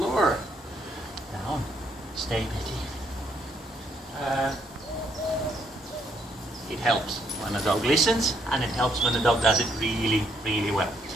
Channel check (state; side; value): normal; both; correlation 0.72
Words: Down, stay Betty. It helps when a dog listens, and it helps when the dog does it really, really well.